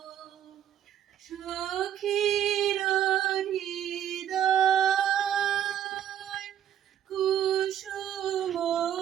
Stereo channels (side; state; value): left; quieter; 10.2 dB